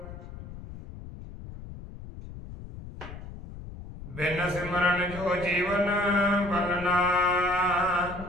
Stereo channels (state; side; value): noise; left; rumble, 13 dB below the sound